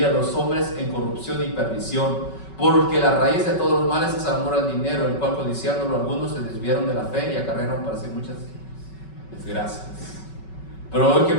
a los hombres en corrupción y perdición. Porque la raíz de todos los males es el amor al dinero, el cual codiciándolo algunos se desviaron de la fe y acarrearon para sí muchas desgracias. Pero hoy, ¿qué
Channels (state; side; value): late; right; 5.3 ms